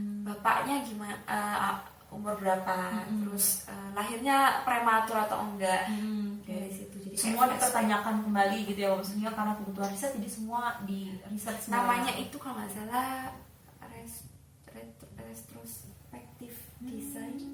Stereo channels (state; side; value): identical; both; correlation 1.00